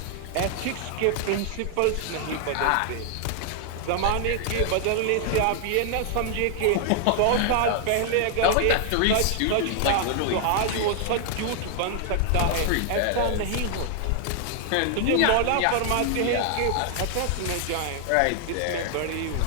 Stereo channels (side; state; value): both; different; correlation 0.00